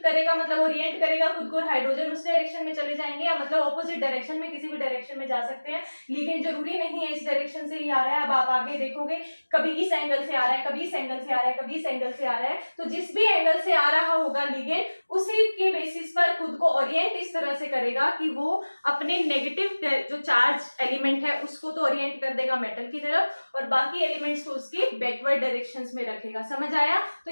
करेगा, मतलब ओरिएंट करेगा खुद को, हाइड्रोजन उस डायरेक्शन में चले जाएंगे, या मतलब ऑपोजिट डायरेक्शन में, किसी भी डायरेक्शन में जा सकते हैं। लिगेंड जरूरी नहीं है इस डायरेक्शन से ही आ रहा है, अब आप आगे देखोगे कभी इस एंगल से आ रहा है, कभी इस एंगल से आ रहा है, कभी इस एंगल से आ रहा है। तो जिस भी एंगल से आ रहा होगा लिगेंड, उसी के बेसिस पर खुद को ओरिएंट इस तरह से करेगा कि वो अपने नेगेटिव जो चार्ज एलिमेंट है उसको तो ओरिएंट कर देगा मेटल की तरफ और बाकी एलिमेंट्स को उसकी बैकवर्ड डायरेक्शंस में रखेगा। समझ आया? तो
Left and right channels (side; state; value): both; inverted; correlation -1.00